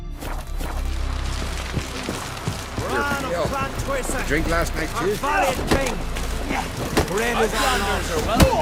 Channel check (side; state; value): both; identical; correlation 1.00